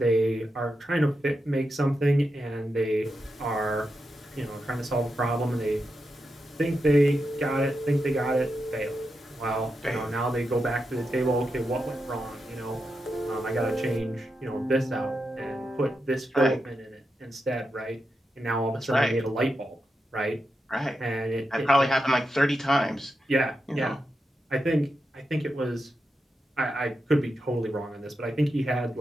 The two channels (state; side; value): normal; both; correlation 0.87